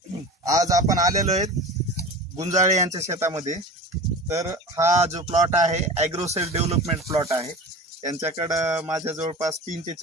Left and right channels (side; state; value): both; normal; correlation 0.34